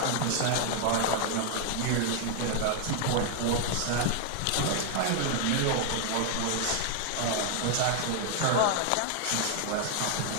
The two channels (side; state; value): both; different; correlation 0.00